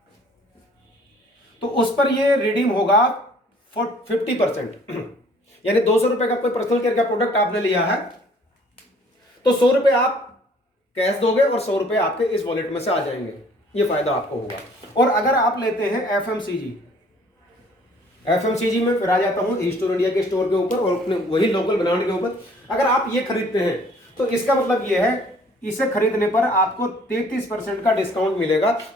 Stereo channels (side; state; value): both; normal; correlation 0.57